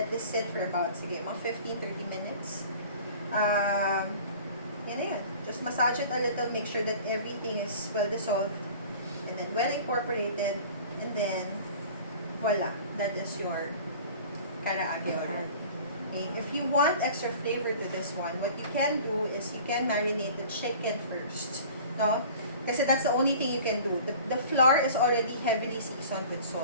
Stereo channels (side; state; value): both; inverted; correlation -0.44